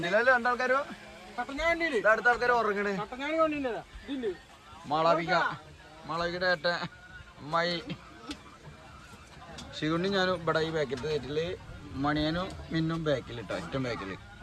രണ്ടാൾക്കാരോ, അടുത്ത ആൾക്കാർ ഉറങ്ങണ്. മാളവികയുടെ ഏട്ടൻ അമ്മായി ശിവണ്ണി ഞാനും ഇവിടെ ഈ ബാക്കിലത്തെ സീറ്റില്, മണിയനും മിന്നും ബാക്കിൽ ഇട്ടോ, ഏറ്റവും ബാക്കിൽ.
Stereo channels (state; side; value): identical; both; correlation 1.00